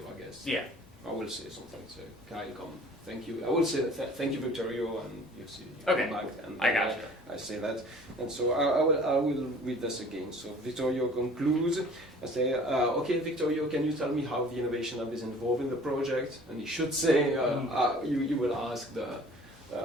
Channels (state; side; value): normal; both; correlation 0.49